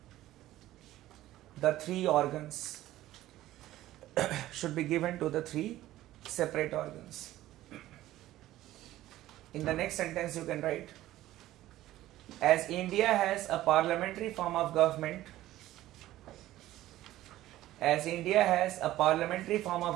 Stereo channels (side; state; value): left; quieter; 14.9 dB